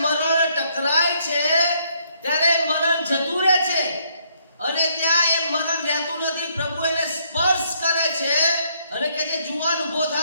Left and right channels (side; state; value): both; inverted; correlation -0.70